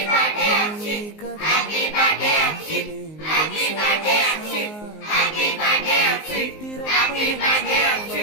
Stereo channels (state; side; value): late; right; 19 ms